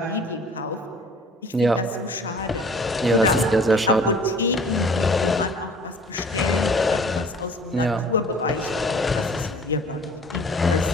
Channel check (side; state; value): both; normal; correlation 0.50